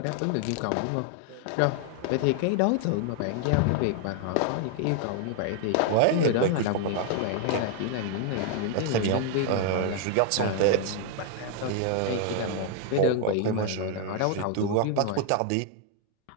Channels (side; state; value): both; different; correlation 0.00